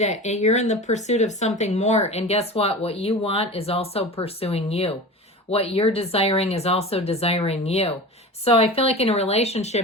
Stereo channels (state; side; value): normal; both; correlation 0.32